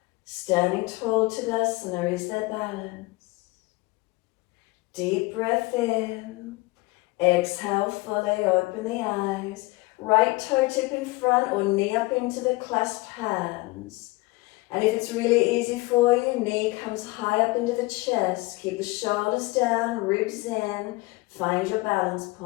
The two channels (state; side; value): quieter; right; 22.7 dB